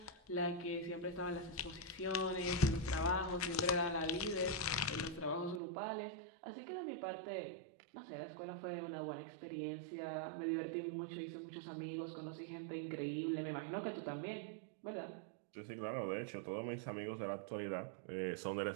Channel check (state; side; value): drops out; left; at 5.6 s